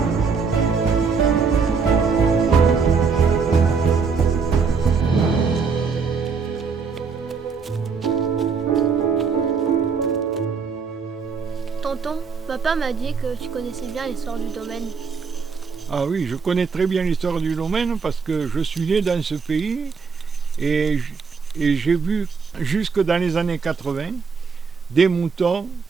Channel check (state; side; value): quieter; left; 5.4 dB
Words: Tonton, papa m'a dit que tu connaissais bien l'histoire du domaine. Ah oui, je connais très bien l'histoire du domaine parce que je suis né dans ce pays et j'ai vu jusque dans les années 80 des moutons,